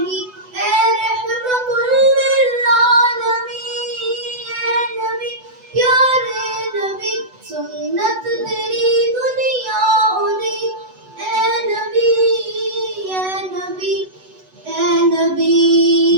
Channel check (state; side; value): late; left; 8.0 ms